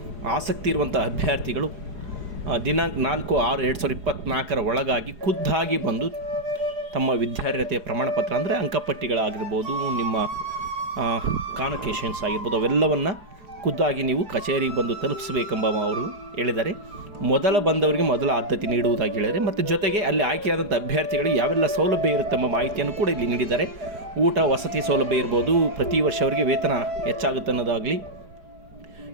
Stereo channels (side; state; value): left; late; 4.9 ms